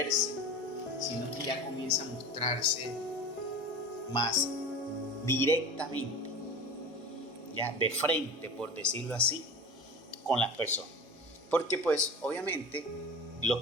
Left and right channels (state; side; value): normal; both; correlation 0.33